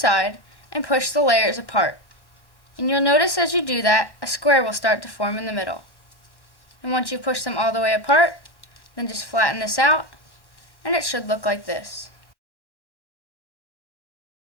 and push the layers apart. And you'll notice as you do that, a square will start to form in the middle. And once you push them all the way apart, then just flatten this out, and it should look like this.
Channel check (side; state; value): right; late; 1.1 ms